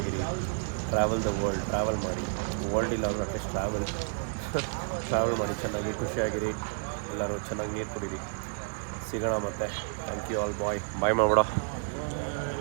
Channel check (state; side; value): silent; left; 58 dB below the other